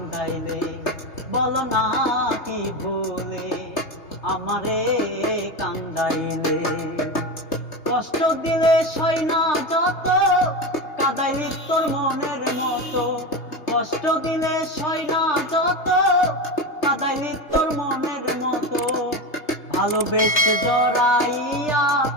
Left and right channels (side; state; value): right; late; 3.3 ms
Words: বলো না কি ভুলে আমারে কান্দাইলে, কষ্ট দিলে সই না যত কাঁদাইলি তোর মনের মতো, কষ্ট দিলে সই না যত কাঁদাইলি তোর মনের মতো, ভালোবেসে জড়াইয়া